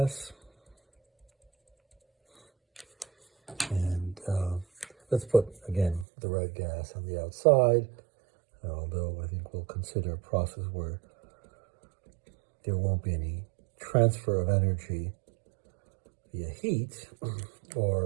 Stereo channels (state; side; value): drops out; left; at 6.1 s